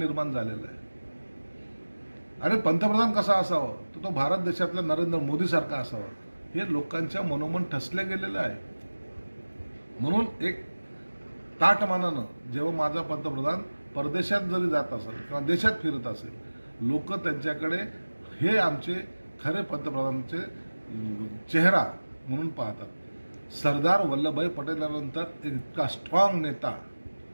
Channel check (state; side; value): inverted; both; correlation -1.00